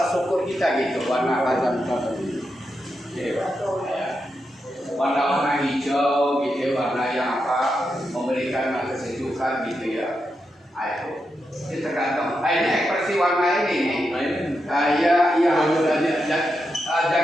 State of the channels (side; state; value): both; normal; correlation 0.86